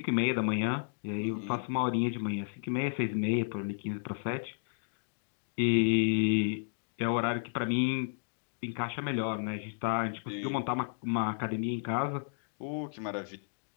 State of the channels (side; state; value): right; silent; digital silence